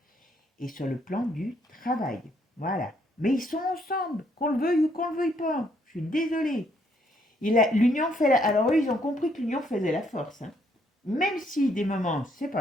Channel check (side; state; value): both; normal; correlation 0.70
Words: et sur le plan du travail. Voilà. Mais ils sont ensemble, qu'on le veuille ou qu'on le veuille pas. Je suis désolée. L'union fait alors eux, ils ont compris que l'union faisait la force, hein. Même si des moments, c'est